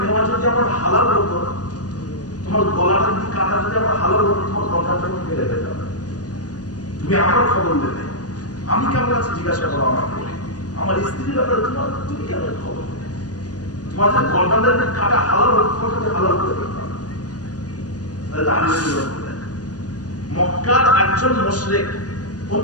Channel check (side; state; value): right; late; 0.68 ms